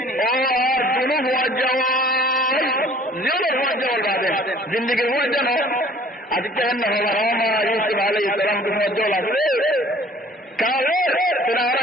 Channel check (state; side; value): normal; both; correlation 0.52